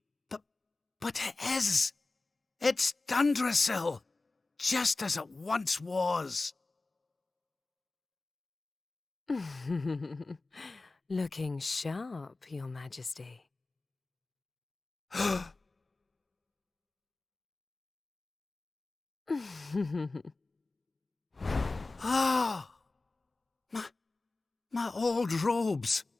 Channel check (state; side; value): quieter; right; 3.4 dB